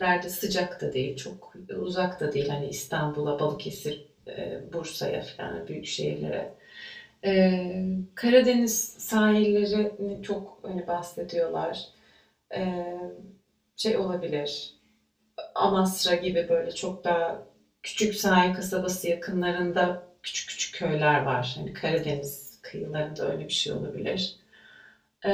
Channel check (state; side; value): identical; both; correlation 1.00